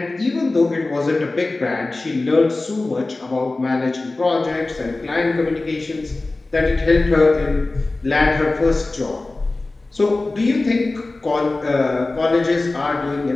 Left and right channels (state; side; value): quieter; right; 3.2 dB